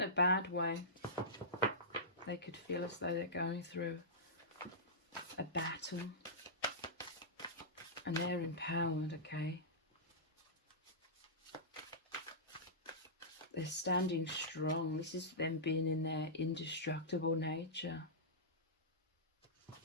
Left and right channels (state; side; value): normal; both; correlation -0.17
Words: a bad way. They could feel as though they're going through a battle. And they're empowered, okay? They're standing strong. This is them being in their indestructible nature.